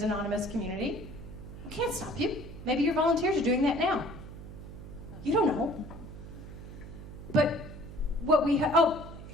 anonymous community. I can't stop you. Maybe your volunteers are doing that now. You don't know. But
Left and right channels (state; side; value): noise; right; hum, 13 dB below the sound